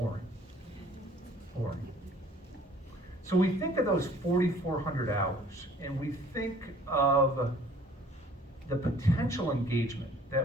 Boring. So we think of those 4,400 hours, and we think of the potential engagement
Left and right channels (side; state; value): both; normal; correlation 0.54